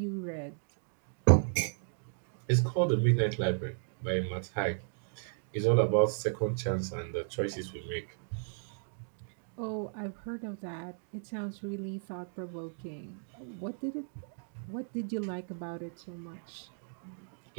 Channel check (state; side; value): silent; left; digital silence